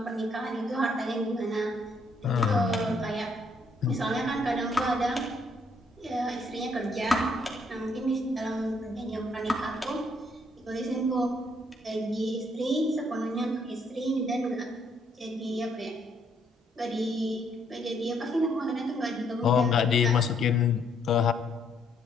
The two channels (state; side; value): normal; both; correlation 0.70